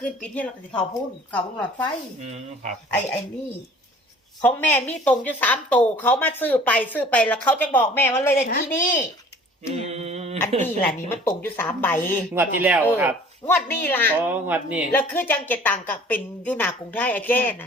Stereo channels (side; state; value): both; normal; correlation 0.50